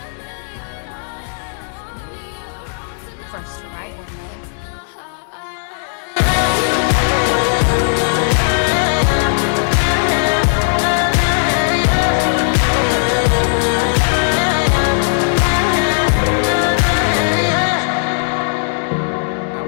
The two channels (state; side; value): silent; right; digital silence